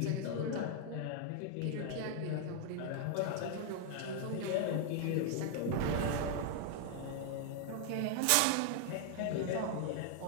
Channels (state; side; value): different; both; correlation 0.00